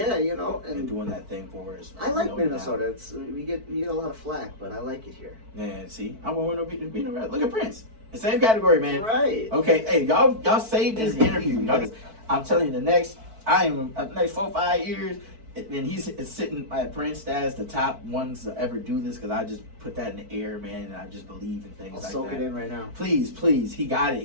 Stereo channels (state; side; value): late; left; 4.5 ms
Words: you know, and and doing that thing for us. I like No Minnesota. doubt. It's we get a lot of flack, but I like it here. Yeah, see, I want to be around. Look at Prince. The same category, man. Right. Okay, hey, y'all saved this interview. I'm telling you, the next 4 or 5 years, and he's sitting at Prince as the top ones to ever do this, because I just put that in the air, man, and I just believe in things I'll like soak that. it in right now. Please, he got it.